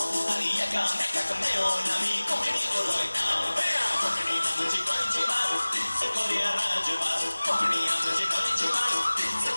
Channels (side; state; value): both; inverted; correlation -1.00